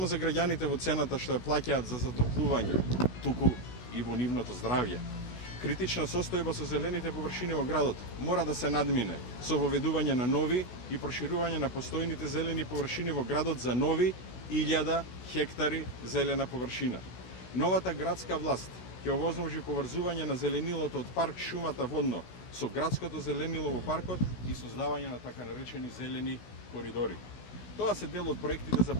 за граѓаните во цената што ја плаќаат за затоплување, туку и во нивното здравје. Критична состојба со зелените површини во градот мора да се надмине со воведување на нови и проширување на постојните зелени површини во градот за нови 1000 хектари зелена површина. Новата градска власт ќе овозможи поврзување на зеленилото од парк шумата водно со градското зеленило во паркот и создавање на така наречени зелени коридори. Тоа се дел од проектите за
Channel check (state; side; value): late; right; 16 ms